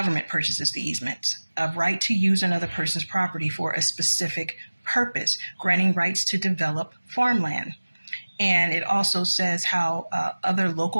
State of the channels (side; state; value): both; inverted; correlation -1.00